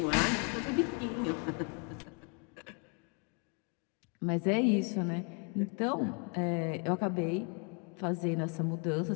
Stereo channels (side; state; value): right; quieter; 36.5 dB